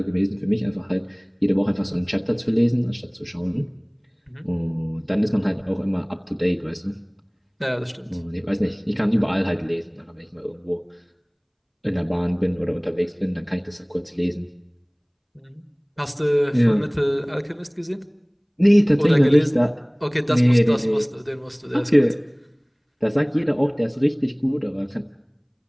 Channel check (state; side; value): identical; both; correlation 1.00